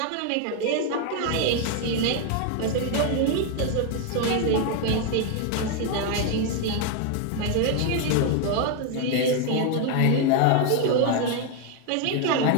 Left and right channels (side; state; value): both; different; correlation 0.01